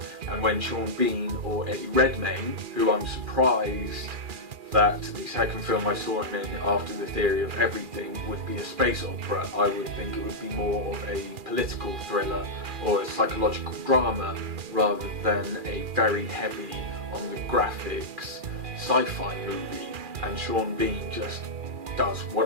And when Sean Bean or Eddie Redmayne, who I'm surprised that the second film I saw him in after The Theory of Everything would be a space opera, I would think it would be more of a political thriller or a psychological drama rather than a very heavy on the graphics, sci-fi movie, and Sean Bean just does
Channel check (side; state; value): left; late; 2.4 ms